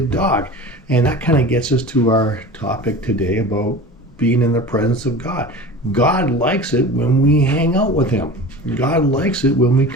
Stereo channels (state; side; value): normal; both; correlation 0.35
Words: dog. And that kind of gets us to our topic today about being in the presence of God. God likes it when we hang out with Him. God likes it when we